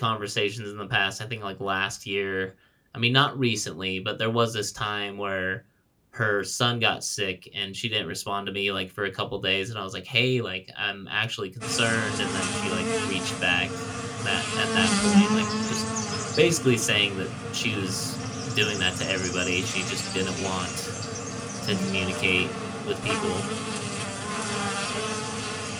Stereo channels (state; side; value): identical; both; correlation 1.00